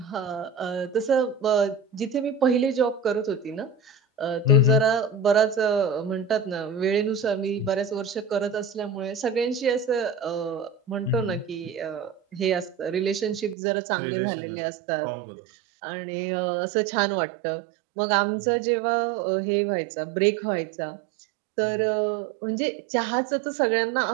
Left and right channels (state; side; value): drops out; left; at 13.6 s